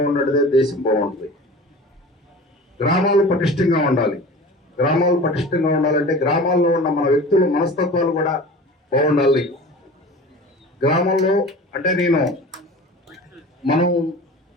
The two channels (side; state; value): both; normal; correlation 0.38